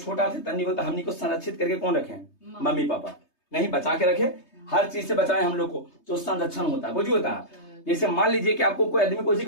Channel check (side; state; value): right; late; 3.3 ms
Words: छोटा थे तन्नी को, तो हमनी को संरक्षित करके कौन रखे? मम्मी पापा नहीं, बचा के रखे, हर चीज से बचाए हम लोग को, तो संरक्षण होता है। कुछ होता है। जैसे मान लीजिए कि आपको कोई आदमी कुछ